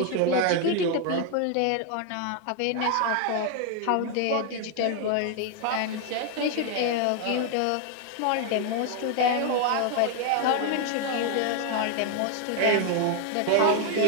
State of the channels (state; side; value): different; both; correlation 0.00